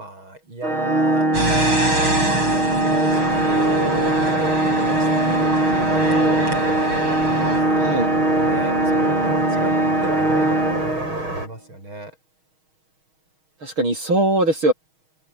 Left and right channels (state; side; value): late; left; 6.3 ms